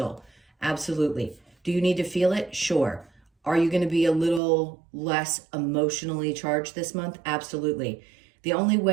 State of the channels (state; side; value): drops out; left; at 4.4 s